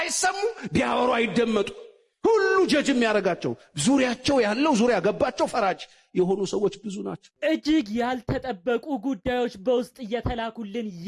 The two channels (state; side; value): identical; both; correlation 1.00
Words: ቢያወሩ አይደመጡ። ሁሉ ጀጅ የሚያረጋቸው ዙሪያቸው ያለው ዙሪያ ገባቸው ፈራጅ የሆኑ ሰዎች ብዙ ናቸው። እጅግ ያልተጠበቁ ጉዳዮች በውስጥ እየተላኩልን